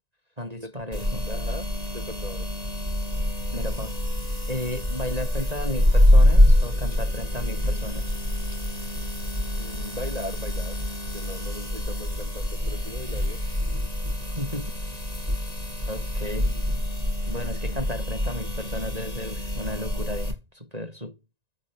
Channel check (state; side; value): late; left; 1.9 ms